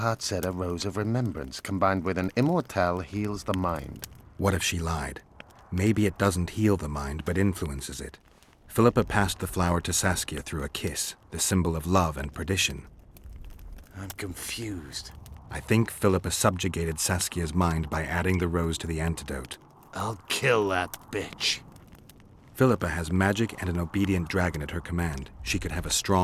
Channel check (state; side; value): identical; both; correlation 1.00